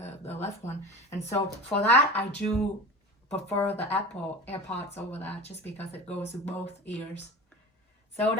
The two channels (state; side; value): normal; both; correlation 0.33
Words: left one. And so for that, I do prefer the Apple AirPods over that, just because it goes to both ears. So